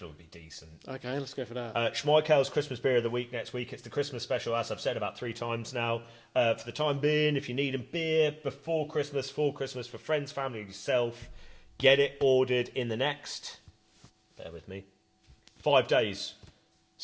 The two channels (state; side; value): identical; both; correlation 1.00